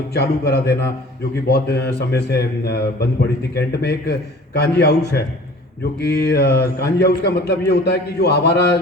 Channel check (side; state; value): both; normal; correlation 0.46